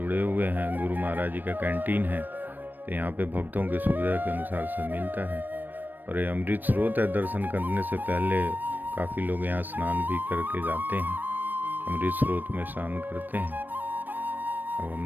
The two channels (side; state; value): left; late; 0.091 ms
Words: हुए हैं। गुरु महाराज जी का कैंटीन है, तो यहाँ पे भक्तों की सुविधा के अनुसार सब मिलता है। और ये अमृत स्रोत है, दर्शन करने से पहले काफ़ी लोग यहाँ स्नान भी करके जाते हैं, अमृत स्रोत में स्नान करते हैं। अब